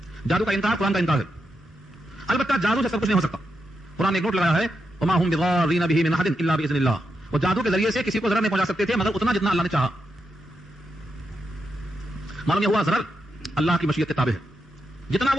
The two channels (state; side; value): normal; both; correlation 0.85